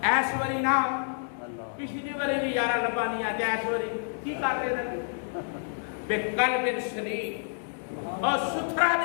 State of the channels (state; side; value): silent; right; digital silence